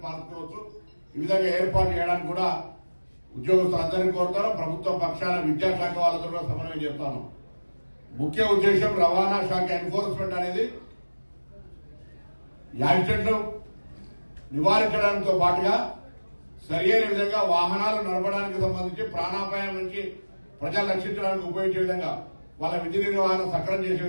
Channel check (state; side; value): inverted; both; correlation -1.00